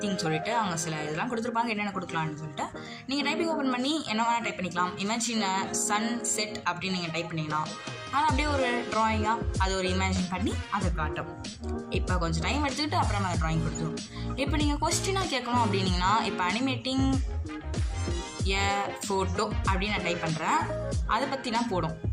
சொல்லிட்டு அவங்க சில இதெல்லாம் கொடுத்துருப்பாங்க, என்னென்ன கொடுக்கலான்னு சொல்லிட்டு நீங்கள் டைப்பிங் ஓப்பன் பண்ணி என்ன வேணால் டைப் பண்ணிக்கலாம். இமேஜின் சன் செட் அப்படின்னு நீங்கள் டைப் பண்ணிங்கன்னா அது அப்படியே ஒரு ட்ராயிங்காக அது ஒரு இமேஜின் பண்ணி அதை காட்டும். இப்போ கொஞ்சம் டைம் எடுத்துக்கிட்டு அப்புறம் அந்த ட்ராயிங் கொடுத்துரும். இப்போ நீங்கள் கொஸ்டினாக கேட்கணும் அப்படின்னீங்கன்னா, இப்போ அனிமேட்டிங் ஏ ஃபோட்டோ அப்படின்னு நான் டைப் பண்ணுறேன். அதை பற்றிலாம் போடும்.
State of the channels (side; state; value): both; identical; correlation 1.00